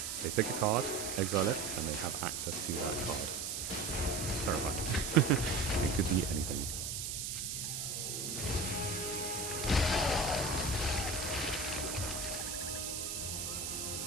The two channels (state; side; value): noise; right; hiss, 3 dB below the sound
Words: They pick a card, exile it, and they have access to that card. Terrifying. It could be anything.